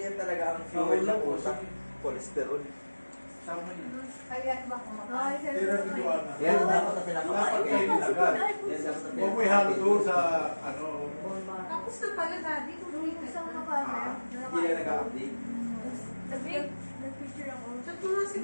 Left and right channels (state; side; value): inverted; both; correlation -1.00